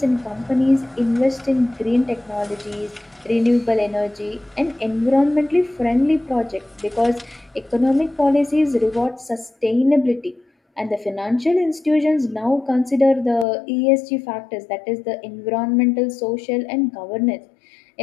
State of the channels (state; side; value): drops out; right; at 13.5 s